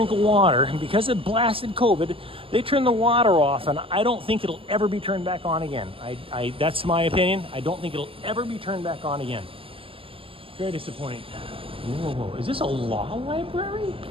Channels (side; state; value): left; late; 0.26 ms